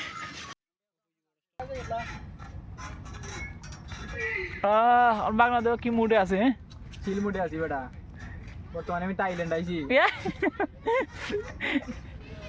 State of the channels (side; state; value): both; identical; correlation 1.00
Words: বাংলাদেশ কি মুডে আছে চিল মুডে আছি বেটা বর্তমানে আমি থাইল্যান্ড আইছি